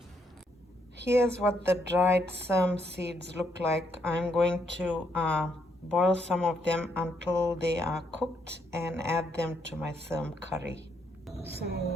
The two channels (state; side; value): normal; both; correlation 0.75